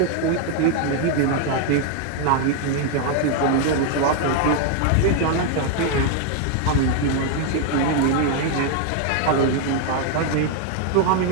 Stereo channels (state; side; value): different; both; correlation 0.00